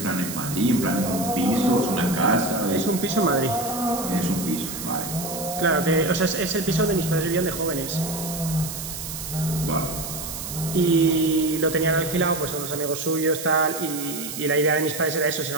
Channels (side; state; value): right; noise; hiss, 8 dB below the sound